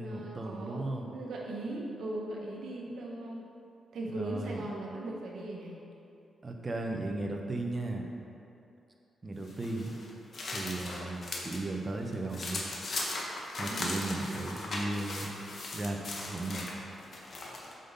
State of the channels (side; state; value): both; normal; correlation 0.85